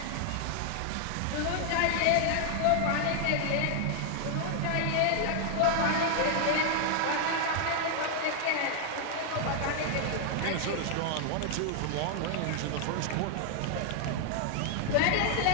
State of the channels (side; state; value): both; different; correlation 0.00